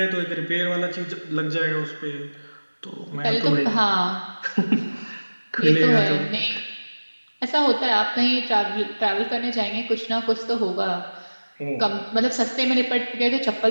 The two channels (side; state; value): both; inverted; correlation -1.00